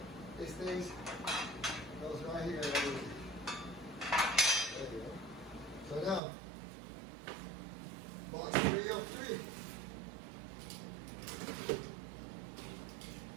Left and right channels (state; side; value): drops out; left; at 6.2 s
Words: this thing goes right here. There you go. So now, box 3 of 3.